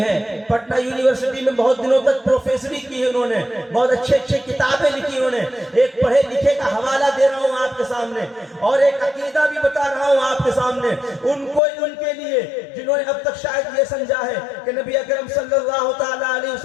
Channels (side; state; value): right; drops out; at 11.6 s